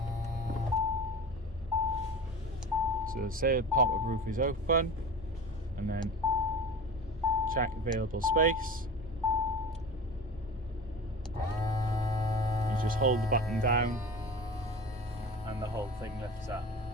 So say the pop-up roof is open, and then check available space. You just hold the button down and the whole thing lifts up.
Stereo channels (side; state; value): both; normal; correlation 0.34